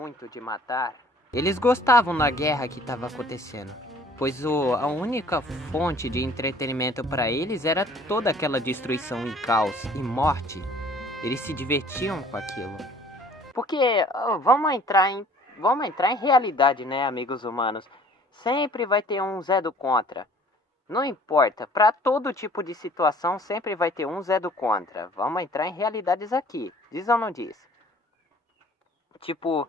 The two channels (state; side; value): normal; both; correlation 0.53